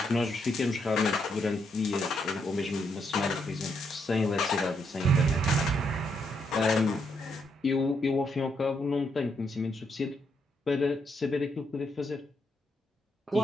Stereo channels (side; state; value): both; normal; correlation 0.77